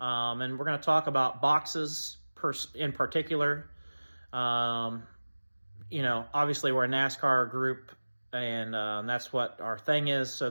And we're going to talk about boxes in particular. Obviously we're a NASCAR group, and that's what our thing is. So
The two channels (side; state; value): both; inverted; correlation -1.00